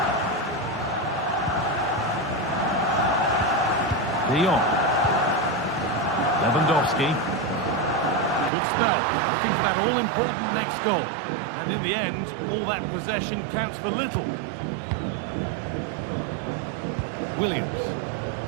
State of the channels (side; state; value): left; drops out; at 8.5 s